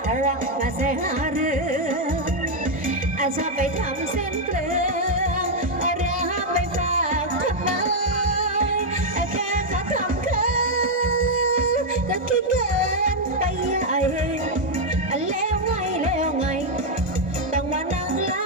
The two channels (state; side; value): late; left; 1.4 ms